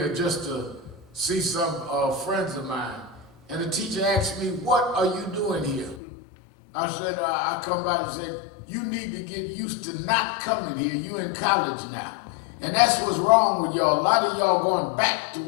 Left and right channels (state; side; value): drops out; right; at 6.0 s